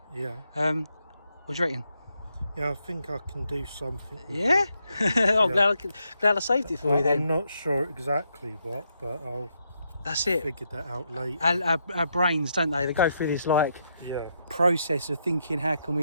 Yeah. What do you reckon? Yeah, I think I can do something with Yeah? it. I'm glad I saved it for you I'm then. not sure exactly what, but I'll That's it. figure that out later. Our brains, don't they go through this like Yeah. process of thinking, how can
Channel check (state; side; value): inverted; both; correlation -0.80